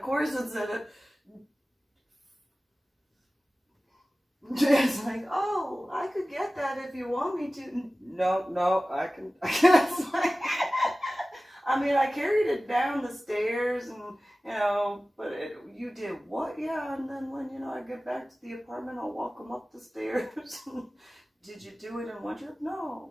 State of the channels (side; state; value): both; normal; correlation 0.97